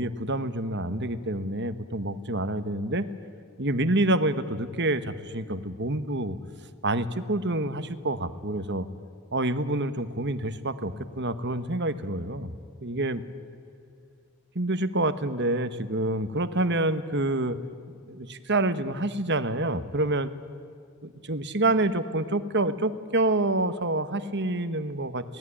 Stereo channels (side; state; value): both; normal; correlation 0.18